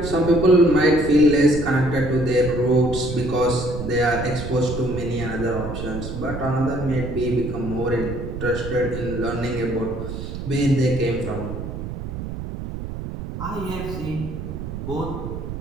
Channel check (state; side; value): noise; right; rumble, 7 dB below the sound